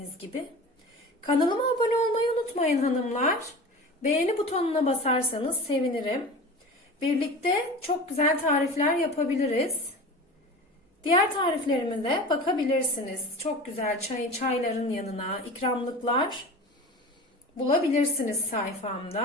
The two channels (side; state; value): both; normal; correlation 0.34